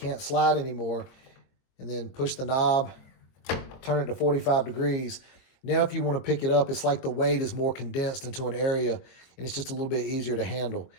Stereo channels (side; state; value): right; late; 23 ms